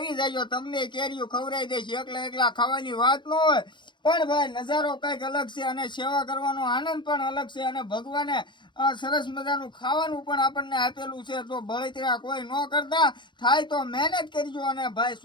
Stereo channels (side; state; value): right; late; 0.23 ms